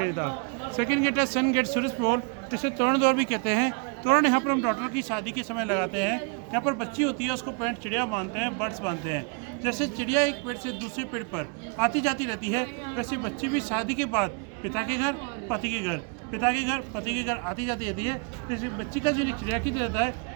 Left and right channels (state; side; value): quieter; left; 35.5 dB